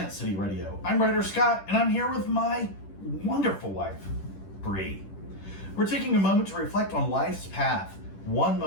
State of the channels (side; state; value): right; late; 10 ms